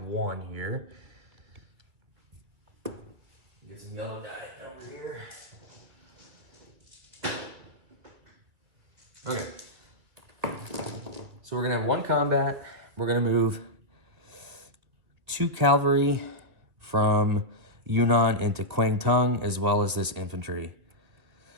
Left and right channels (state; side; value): late; left; 2.6 ms